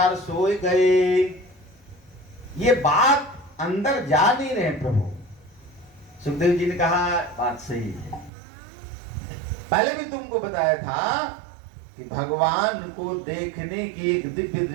सोए गए। ये बात अंदर जा नहीं रहे प्रभु। सुखदेव जी ने कहा बात सही है। पहले भी तुमको बताया था कि भगवान को देखने की एक दिव्य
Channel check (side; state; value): left; drops out; at 8.3 s